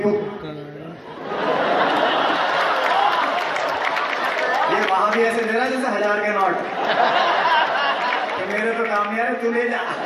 ये वहां भी ऐसे दे रहा है जैसे 1000 के नोट कि मेरे तो काम नहीं आ रहे, तू ले जा।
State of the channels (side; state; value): both; identical; correlation 1.00